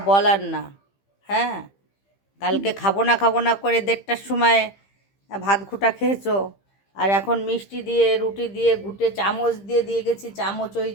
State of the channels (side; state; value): right; late; 15 ms